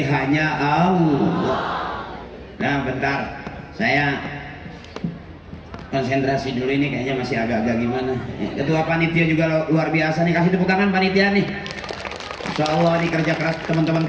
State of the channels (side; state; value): both; identical; correlation 1.00